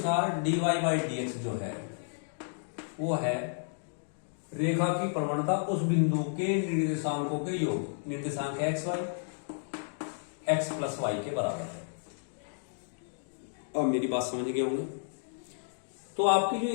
dy बाई dx जो है वो है रेखा की प्रवणता उस बिंदु के निर्देशांकों के योग, निर्देशांक x y x plus Y के बराबर है। अब मेरी बात समझ गए होंगे। तो आपकी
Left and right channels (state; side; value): silent; right; digital silence